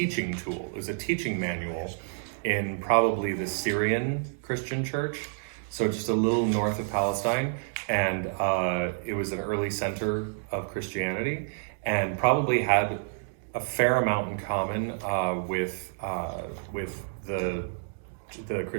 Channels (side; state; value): left; silent; digital silence